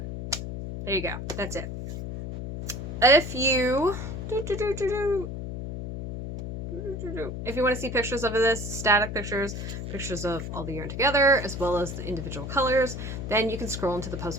there you go. That's it. If you want to see pictures of this, static pictures of all the yarn together, as well as the individual colors, then you can scroll into the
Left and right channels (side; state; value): left; noise; hum, 6 dB below the sound